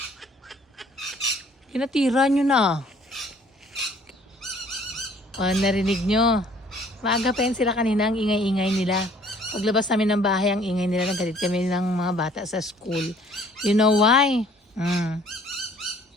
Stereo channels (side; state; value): both; normal; correlation 0.57